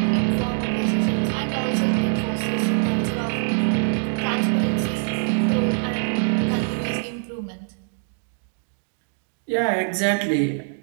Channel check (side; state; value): left; silent; digital silence